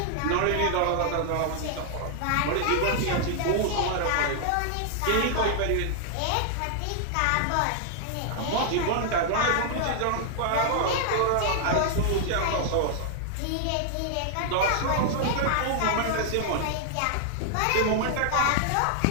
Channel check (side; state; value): both; different; correlation -0.01